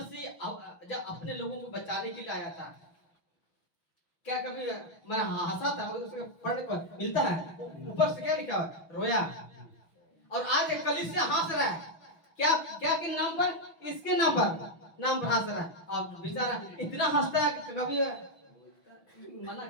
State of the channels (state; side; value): late; right; 6.0 ms